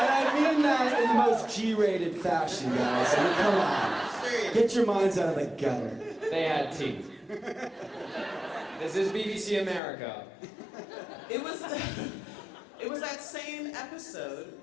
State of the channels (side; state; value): right; drops out; at 9.8 s